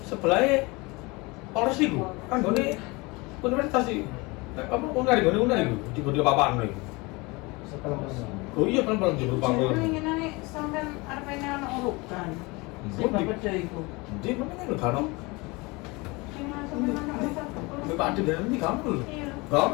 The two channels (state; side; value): quieter; right; 25.2 dB